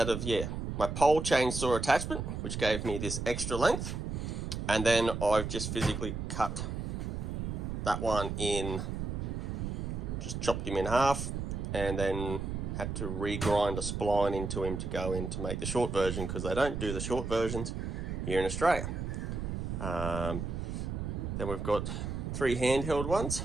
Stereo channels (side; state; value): right; noise; rumble, 4 dB below the sound